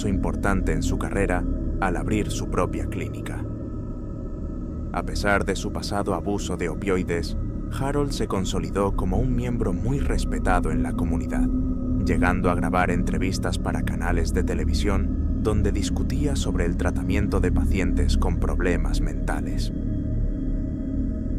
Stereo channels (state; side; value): identical; both; correlation 1.00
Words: importante en su carrera al abrir su propia clínica. A pesar de su pasado abuso de opioides, Harold se consolidó como un miembro muy respetado en la comunidad, llegando a grabar entrevistas para canales de televisión donde discutía sobre el tratamiento de pacientes con problemas mentales.